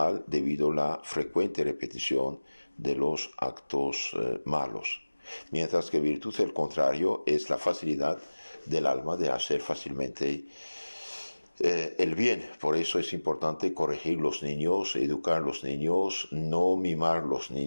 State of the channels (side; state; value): both; inverted; correlation -1.00